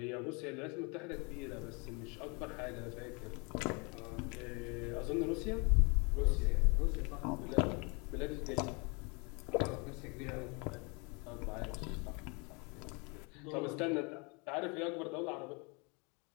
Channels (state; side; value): quieter; right; 31.3 dB